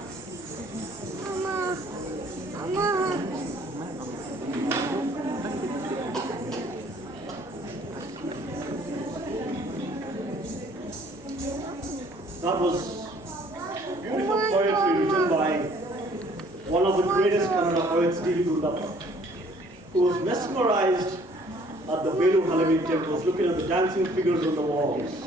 Mama. That was beautiful poetry written by one of the greatest Kannada poets, D.V. Gundappa, who was mesmerized at the Velu Halavi temples, looking at the dancing figures on the walls.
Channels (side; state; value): both; normal; correlation 0.58